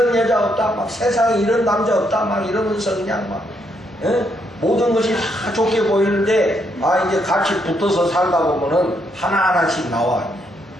여자 없다, 막 세상에 이런 남자 없다, 막 이러면서 그냥 막 예? 모든 것이 다 좋게 보이는데 이제 같이 붙어서 살다 보면은 하나하나씩 나와.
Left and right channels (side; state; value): both; normal; correlation 0.75